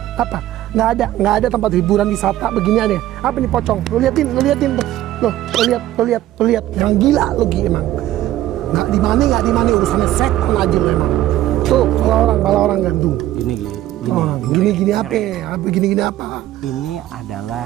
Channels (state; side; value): quieter; left; 14.0 dB